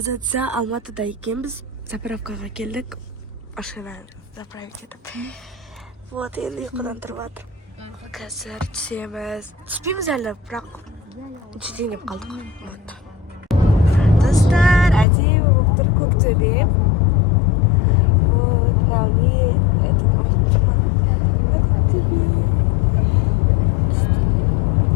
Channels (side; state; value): right; drops out; at 15.1 s